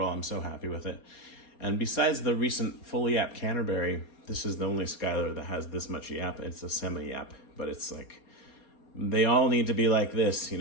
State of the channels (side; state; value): right; late; 4.3 ms